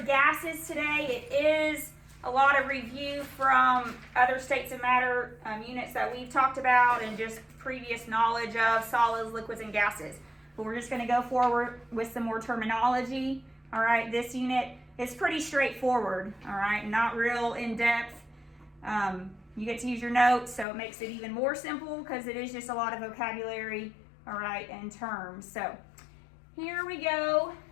gases today. It is a lot of review from other states of matter units that we've talked about and just previous knowledge of solids, liquids, and gases. But we're just going to go forward with some more terminology. All right, this unit is pretty straightforward. All right, not real in-depth. You get to use your notes, so it makes it even more simple because it is just a lot of vocabulary, all right, and terms. So here we go.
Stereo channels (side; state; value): right; drops out; at 20.7 s